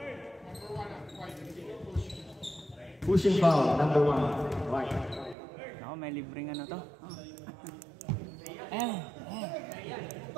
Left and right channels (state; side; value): drops out; left; at 5.4 s